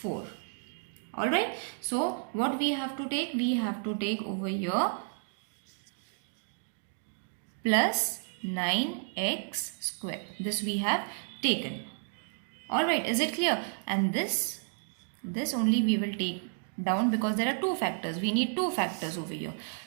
Alright. So what we have to take? We have to take over here plus 9x square. This we have taken. Alright, is it clear? And this only we will take down because there are two factors. We need two factors over here.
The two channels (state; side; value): silent; left; digital silence